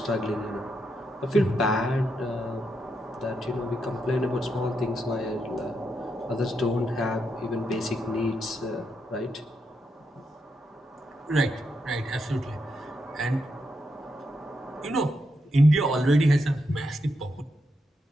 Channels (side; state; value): both; normal; correlation 0.82